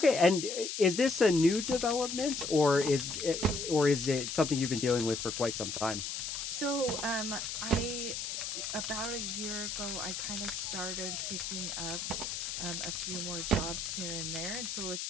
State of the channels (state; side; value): noise; left; hiss, 4 dB below the sound